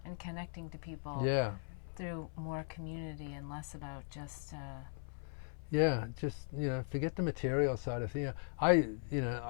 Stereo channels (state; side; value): silent; right; 52 dB below the other